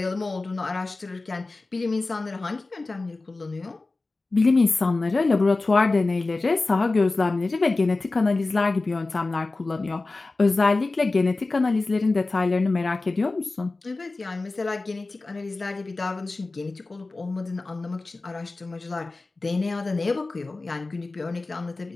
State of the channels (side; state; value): right; quieter; 3.4 dB